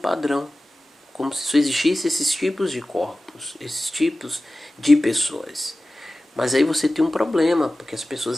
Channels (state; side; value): normal; both; correlation 0.96